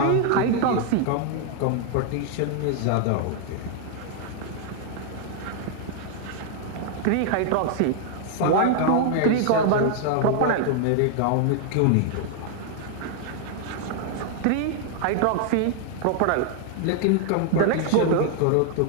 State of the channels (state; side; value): different; both; correlation 0.00